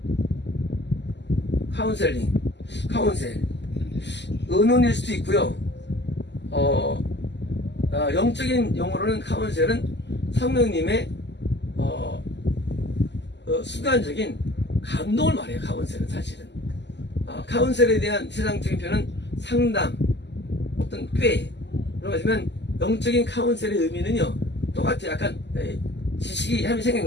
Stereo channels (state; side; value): late; right; 0.51 ms